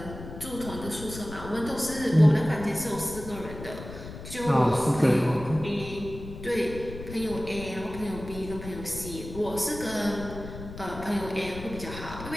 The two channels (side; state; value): left; noise; rumble, 11 dB below the sound